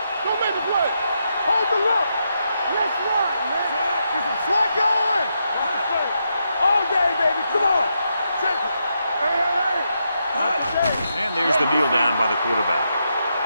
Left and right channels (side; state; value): both; inverted; correlation -0.82